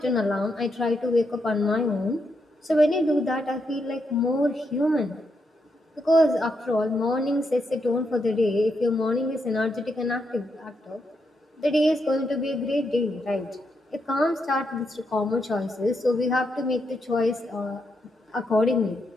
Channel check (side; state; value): both; normal; correlation 0.81